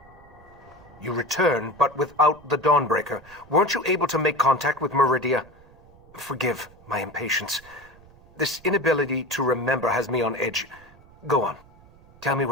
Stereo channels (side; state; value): right; noise; rumble, 25 dB below the sound